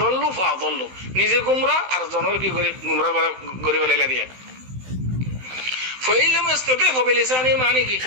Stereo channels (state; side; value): late; left; 16 ms